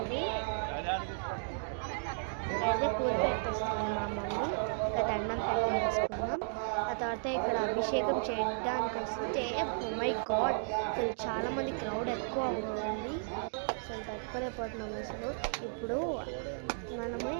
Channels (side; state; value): left; silent; digital silence